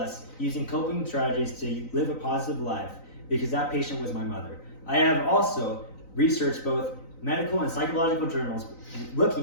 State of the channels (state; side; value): late; right; 3.9 ms